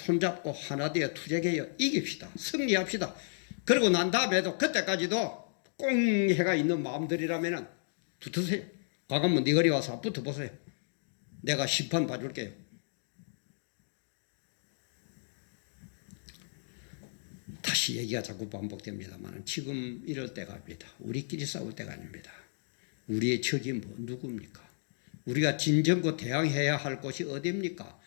하나 되어 투쟁하여 이깁시다. 승리합시다. 그리고 난 다음에도 그때까지도 꽁해가 있는 마음들이라면 붙으세요. 광화문 네 거리 와서 붙어보세요. 내가 심판 봐줄게요. 다시 얘기가 자꾸 반복됩니다만 지금 이럴 때가 아닙니다. 우리끼리 싸울 때가 아닙니다. 우리의 적이 누굽니까? 우리가 진정고 대항해야 할 곳이 어디입니까?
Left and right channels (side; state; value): right; silent; digital silence